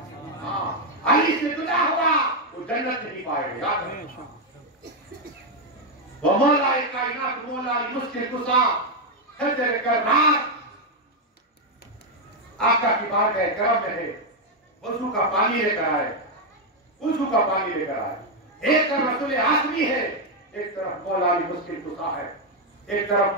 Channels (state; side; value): normal; both; correlation 0.02